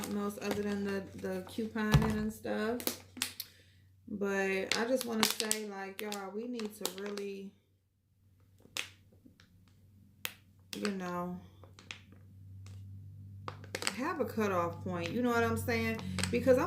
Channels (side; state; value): both; identical; correlation 1.00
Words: else other than the couponing and stuff. But I just want to say, like, y'all, we need to really, you know, have a cutoff point. You know what I'm saying? Because I'm